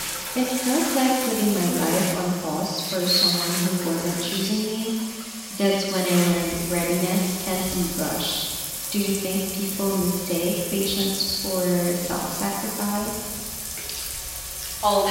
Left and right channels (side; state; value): both; identical; correlation 1.00